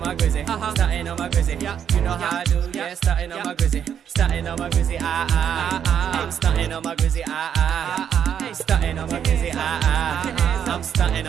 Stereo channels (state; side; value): quieter; left; 8.6 dB